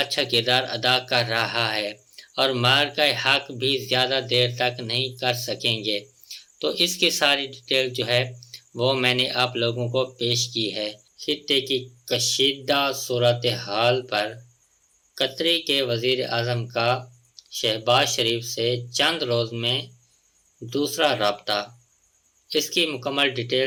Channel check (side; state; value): both; identical; correlation 1.00